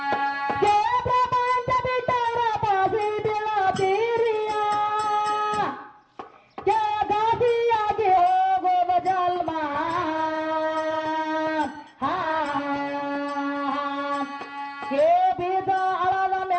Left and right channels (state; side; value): identical; both; correlation 1.00